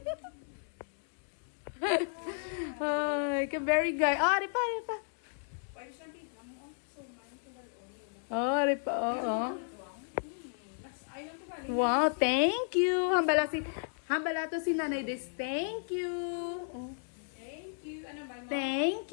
Ay, ka-very guy. Ah, ripa, ripa. Oh, ripa, oo. Wow, thank you. Hambala to si Nanay Des. Thank you. Thank you. Ano ba? Thank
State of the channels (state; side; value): silent; right; digital silence